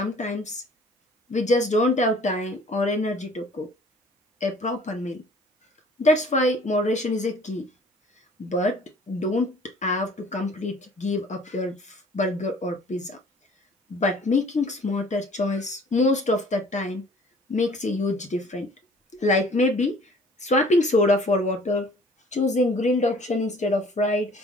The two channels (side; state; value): both; normal; correlation 0.52